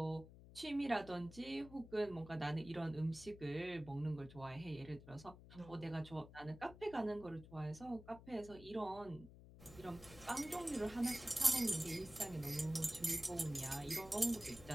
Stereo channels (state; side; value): noise; left; hum, 17 dB below the sound